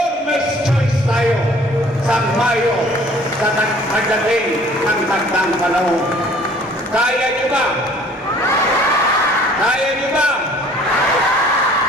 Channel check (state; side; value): normal; both; correlation 0.54